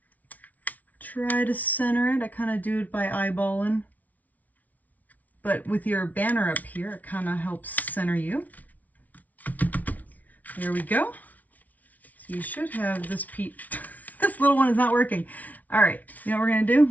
Try to center it. I kind of do it by eyeballing. But with your banner up here, it kind of helps center you. There we go. So you should have this piece. This little one is not working. All right, you know what we're gonna do?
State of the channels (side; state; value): right; late; 0.074 ms